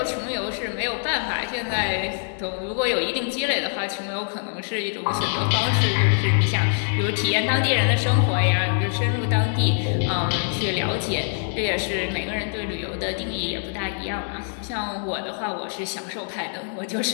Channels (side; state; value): right; silent; 62 dB below the other